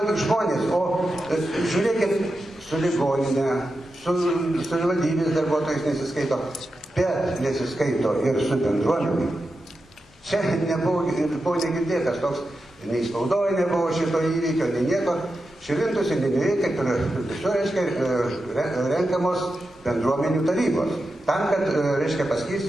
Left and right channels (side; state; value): both; normal; correlation 0.90